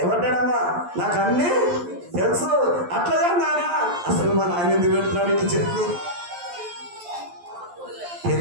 ఏమంటాడమ్మా? నాకు అన్ని తెలుసు. అట్లాగా నానా అసలు మన ఆయన ఎందుకు పెడుతున్నాడు? ఇట్లా చెప్పు.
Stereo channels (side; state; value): left; late; 11 ms